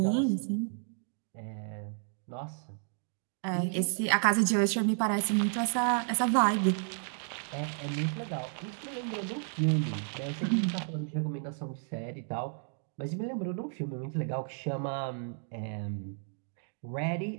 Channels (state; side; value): silent; left; 56 dB below the other